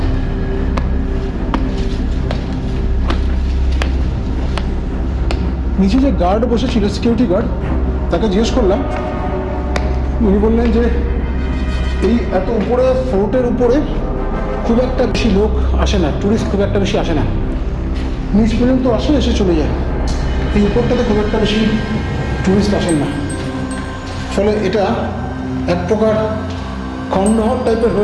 নিচে যে গার্ড বসেছিল, সিকিউরিটি গার্ড, তাকে জিজ্ঞেস করলাম। উনি বললেন যে এই এত উপরে ফোর্টের উপরে খুব একটা বেশি লোক আসে না, টুরিস্ট খুব একটা বেশি আসে না, নিচ পর্যন্ত আসে, এসে চলে যায়। এই উপরটাতে খুব একটা বেশি টুরিস্ট আসেন না, ফলে এটা এক প্রকার খণ্ডহর টাইপের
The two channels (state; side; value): identical; both; correlation 1.00